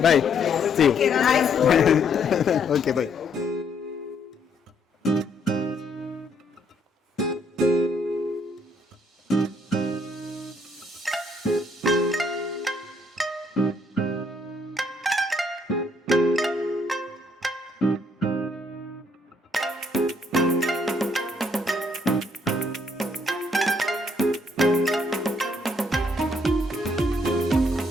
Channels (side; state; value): both; normal; correlation 0.69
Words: Bye, see you. Okay, bye.